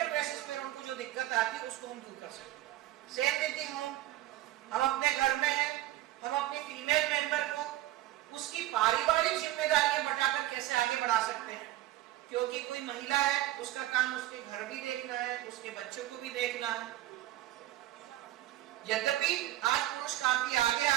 बेसिस पर उनको जो दिक्कत आती है उसको हम दूर कर सकें। सेम देती हूँ, हम अपने घर में हैं, हम अपनी फीमेल मेंबर को उसकी पारिवारिक जिम्मेदारियां बटाकर कैसे आगे बढ़ा सकते हैं, क्योंकि कोई महिला है उसका काम उसके घर भी देखना है, उसके बच्चों को भी देखना है। यद्यपि आज पुरुष काफी आगे आ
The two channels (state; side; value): quieter; left; 15.2 dB